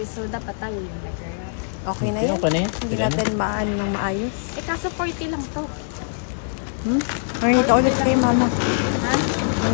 so dapat tayo yung nag-wrap. Okay na yun. Hindi natin maano ng maayos. Eh, kaso 40 lang to. Nakita ulit kay mama. Ha?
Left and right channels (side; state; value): right; silent; digital silence